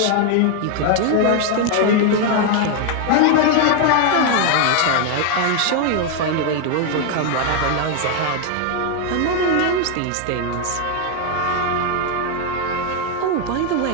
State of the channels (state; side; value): different; both; correlation 0.01